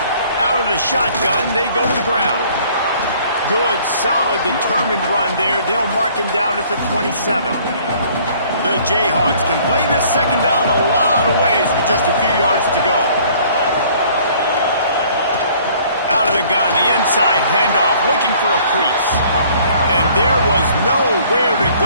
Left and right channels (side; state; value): both; inverted; correlation -0.57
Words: The shotgun, they go to the ground. Good, solid, determined run there. They'll mark him down at the 27. The Jayhawks can play this second down a lot of ways with just a few yards to go. Out of the gun, the inside handoff, looking for a crease. And there was nowhere to